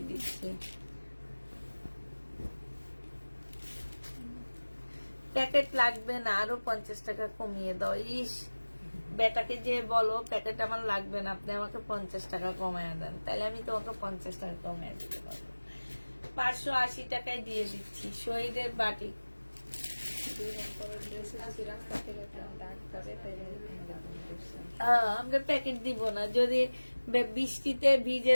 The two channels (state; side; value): inverted; both; correlation -1.00